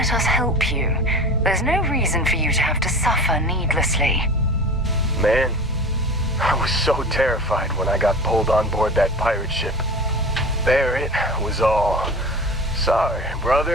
us help you. There's no reason for you to have to suffer needlessly. Man, I was so terrified when I got pulled on board that pirate ship. There it was all. Sorry,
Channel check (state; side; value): normal; both; correlation 0.35